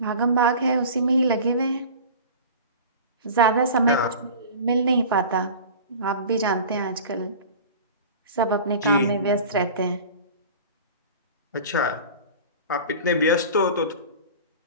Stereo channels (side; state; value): both; inverted; correlation -0.37